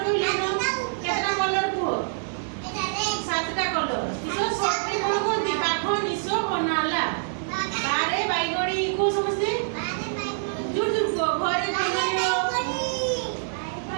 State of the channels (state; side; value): silent; left; digital silence